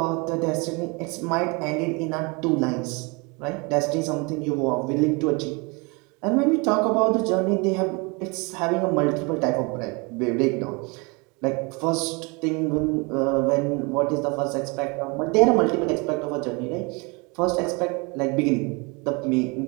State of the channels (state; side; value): quieter; left; 29.2 dB